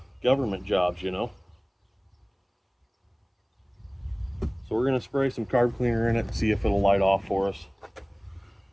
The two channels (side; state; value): both; identical; correlation 1.00